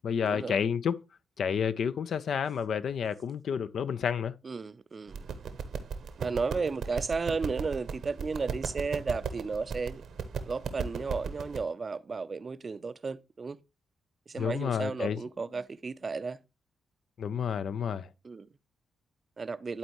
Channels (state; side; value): normal; both; correlation 0.78